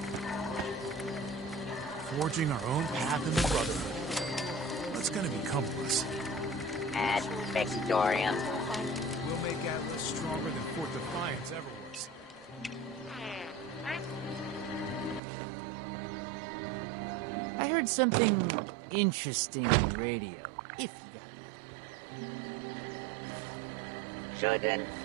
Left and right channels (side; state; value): left; drops out; at 15.2 s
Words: Forging our own path in the Brotherhood. What's gonna become of us? At Victorian. We'll make Atlas stronger than Fort Defiance ever was. I heard something interesting on the radio. If Shouldn't